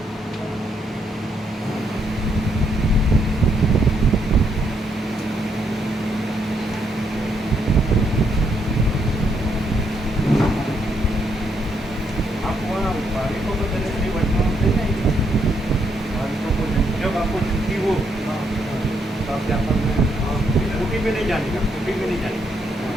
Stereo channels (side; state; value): both; normal; correlation 0.75